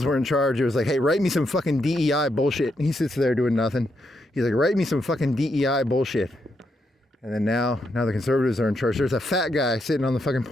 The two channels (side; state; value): both; normal; correlation 0.80